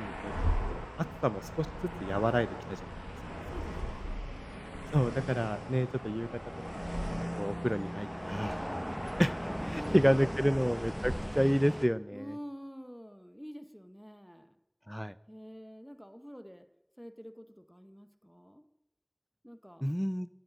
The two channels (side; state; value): both; identical; correlation 1.00